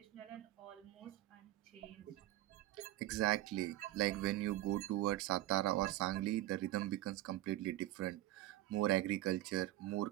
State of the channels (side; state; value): left; quieter; 15.6 dB